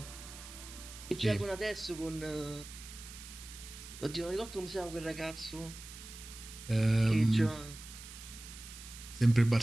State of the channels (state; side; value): noise; right; hiss, 14 dB below the sound